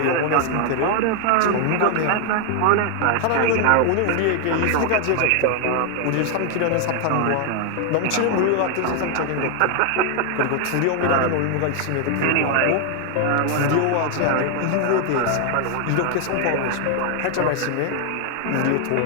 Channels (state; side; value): different; both; correlation 0.00